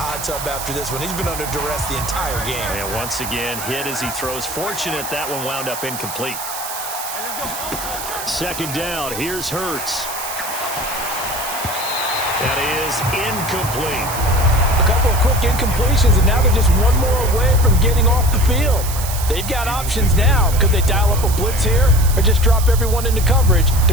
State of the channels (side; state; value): right; noise; hiss, 8 dB below the sound